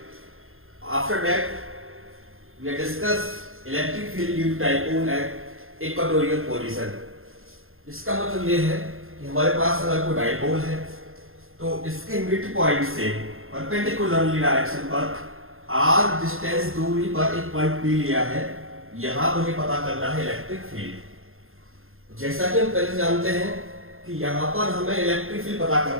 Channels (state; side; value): late; left; 0.61 ms